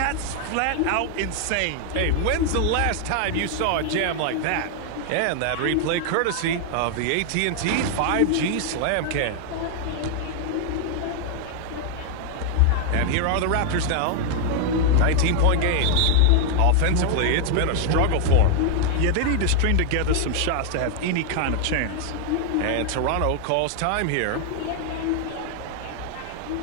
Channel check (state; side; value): different; both; correlation 0.00